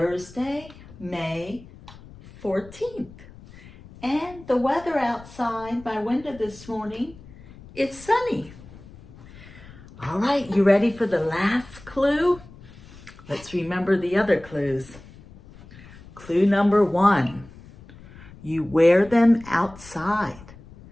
May 14th. And the weather outside my window this morning, it's sunny. All right, you ready for the last clue? Let's remember the other clues. Clue number 1, you wear them outside.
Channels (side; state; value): left; noise; rumble, 20 dB below the sound